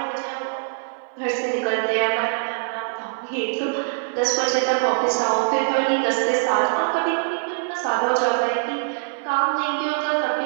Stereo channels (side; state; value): left; silent; digital silence